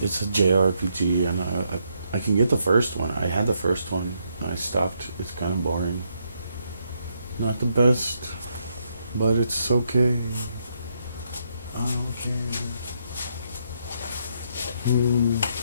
it's a JRPG and I can get the first one. I had the first one. I stopped. It's kind of boring. Not the best, but it's okay. Okay.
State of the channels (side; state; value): both; inverted; correlation -0.77